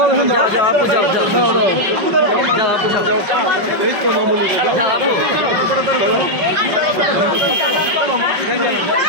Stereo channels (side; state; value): left; late; 5.2 ms